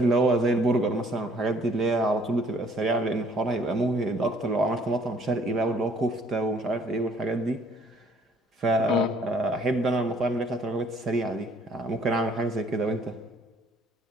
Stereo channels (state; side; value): normal; both; correlation 0.60